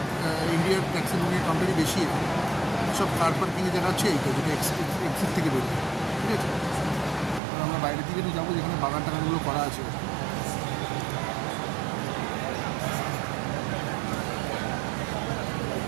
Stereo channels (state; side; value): drops out; left; at 7.4 s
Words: ইন্ডিয়ার ট্যাক্সি বুকিং কাউন্টারই বেশি এখানে, সব কার পার্কিংয়ে দেখাচ্ছে এইটা, যেটা এক্সিট থেকে বেরোয়, ঠিক আছে। আর আমরা বাইরের দিকে যাবো যেখানে বাগান টাগানগুলো করা আছে।